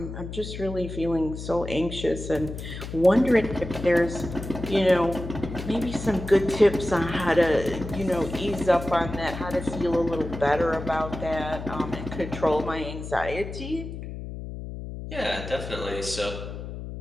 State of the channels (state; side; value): noise; left; hum, 9 dB below the sound